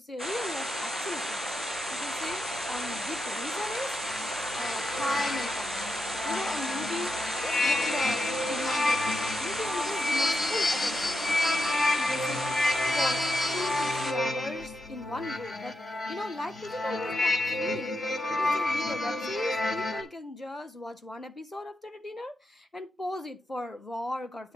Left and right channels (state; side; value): normal; both; correlation 0.86